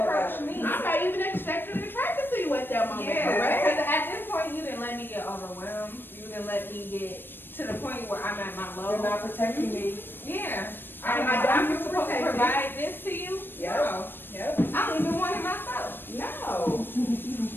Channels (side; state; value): right; late; 0.097 ms